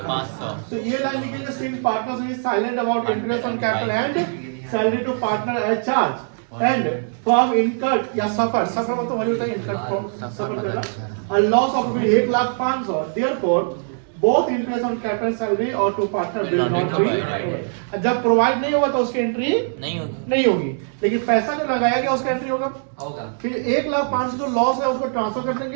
तो ये लाइन लिखेंगे since partners is silent about interest on capital and salary to partner as charge and firm incurred या सफर मतलब वही होता है इनकर्ड सफर करना a loss of 1,05,000 therefore both interest on capital salary और to partner will not be। जब provide नहीं होगा तो उसकी एंट्री नहीं होगी, लेकिन पैसा जो लगाया गया उसका एंट्री होगा। फिर 1,05,000 जो लॉस है उसको ट्रांसफर कर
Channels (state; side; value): silent; left; digital silence